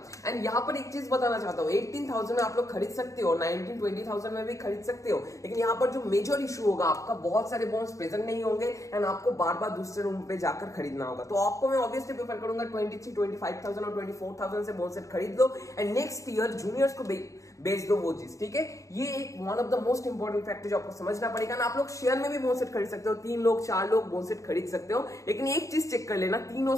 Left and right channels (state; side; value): late; right; 0.16 ms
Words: एंड यहाँ पर एक चीज बताना चाहता हूँ, 18,000 में आप लोग खरीद सकते हो, 19-20,000 में भी खरीद सकते हो। लेकिन यहाँ पर जो मेजर इशू होगा, आपका बहुत सारे बोन्स प्रेजेंट नहीं होंगे एंड आपको बार बार दूसरे रूम पे जाकर खरीदना होगा। तो आपको मैं ऑब्वियसली प्रेफर करूंगा 23-25,000 और 24,000 से बोन सेट खरीद लो एंड नेक्स्ट ईयर जूनियर्स को बेच दो वो चीज, ठीक है। ये एक one of the most important factor जो आपको समझना पड़ेगा ना। आप लोग शेयर में भी बोन सेट खरीद सकते हो, 3 लोग 4 लोग बोन सेट खरीद सकते हो, लेकिन एक चीज चेक कर लेना, तीनों